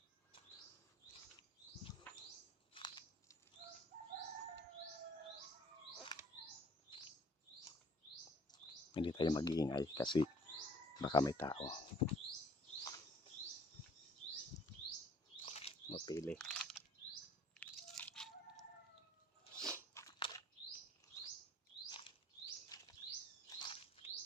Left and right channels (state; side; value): normal; both; correlation 0.56